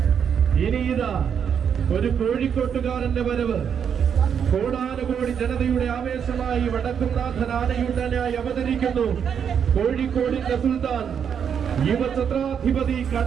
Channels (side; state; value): left; quieter; 7.7 dB